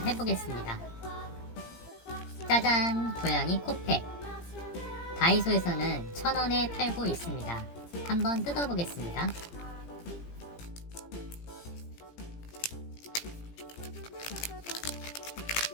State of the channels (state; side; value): late; right; 17 ms